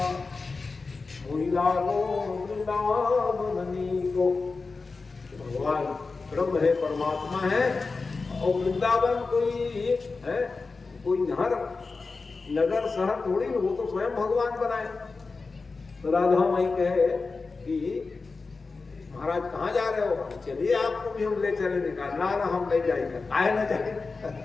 मोहिला वो वृंदावन को भगवान ब्रह्म है परमात्मा है और वृंदावन कोई है कोई घर नगर शहर थोड़ी वो तो स्वयं भगवान बनाए। तो राधा माई कहे कि महाराज कहाँ जा रहे हो, चलिए आपको भी हम ले चलेंगे। कहा ना हम नहीं जाएंगे, काहे ना जाएंगे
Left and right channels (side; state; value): right; quieter; 4.1 dB